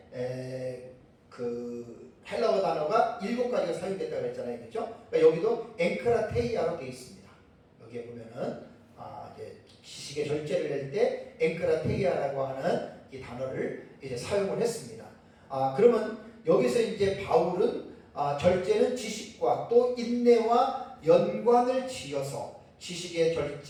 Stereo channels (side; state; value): both; identical; correlation 1.00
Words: 헬라어 단어가 7가지가 사용됐다고 했잖아요. 그렇죠? 그러니까 여기도 앵크라테이아로 되어 있습니다. 여기에 보면은 이제 지식의 절제를 낼 때 앵크라테이아라고 하는 이 단어를 이제 사용을 했습니다. 그러면 여기서 이제 바울은 절제는 지식과 또 인내와 연관을 지어서 지식의